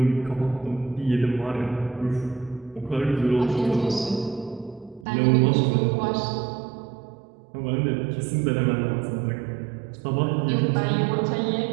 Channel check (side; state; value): left; drops out; at 5.1 s